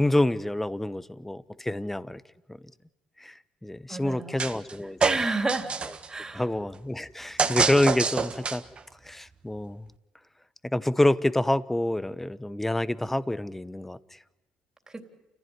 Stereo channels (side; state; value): both; normal; correlation 0.87